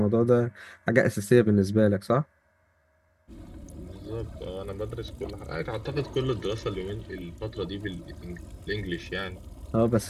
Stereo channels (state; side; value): identical; both; correlation 1.00